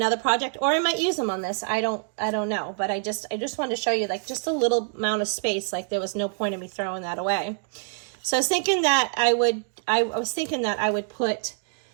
project, or I might use them on this. I don't know, but I just wanted to show you like just a little amount of space. Like there was no point in me throwing that away. So I was thinking that I would put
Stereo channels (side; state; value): left; silent; digital silence